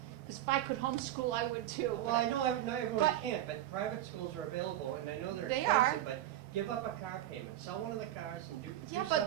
because if I could homeschool, I would too. Well, I know not everyone But- can't, but private schools are available, and I know they're They are. expensive, but give up a car payment, sell one of the cars and do Yeah, some.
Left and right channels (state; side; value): quieter; left; 13.1 dB